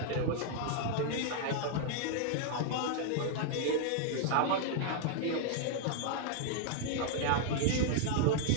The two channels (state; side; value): different; both; correlation -0.01